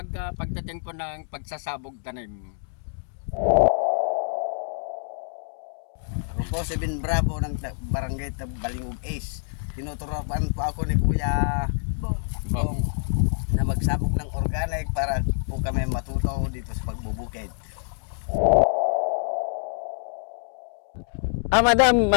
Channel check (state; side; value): silent; right; digital silence